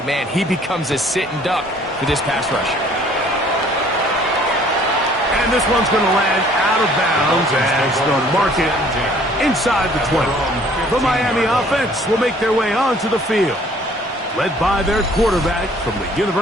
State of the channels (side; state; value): both; normal; correlation 0.57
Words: man, he becomes a sitting duck for this pass rush. And this one's going to land out of bounds as they'll mark it inside the 20. The Miami offense will make their way onto the field, led by their quarterback from the